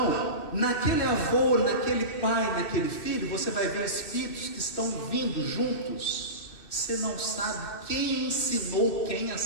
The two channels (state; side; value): late; right; 2.6 ms